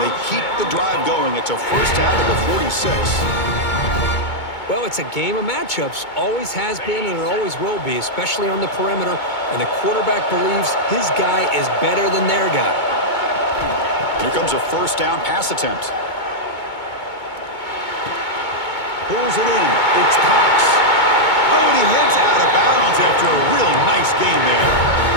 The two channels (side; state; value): right; late; 2.2 ms